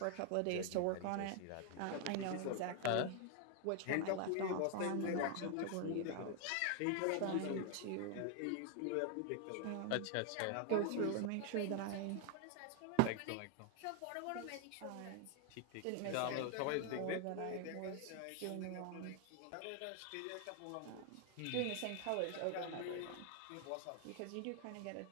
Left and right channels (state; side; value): different; both; correlation 0.00